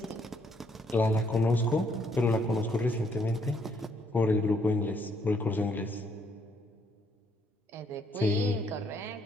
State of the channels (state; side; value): normal; both; correlation 0.70